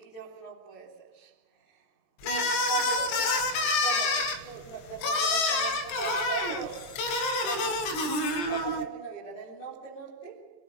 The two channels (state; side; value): late; right; 23 ms